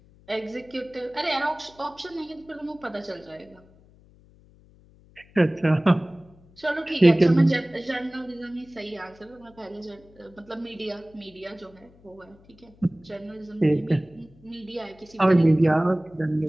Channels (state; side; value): noise; left; hum, 27 dB below the sound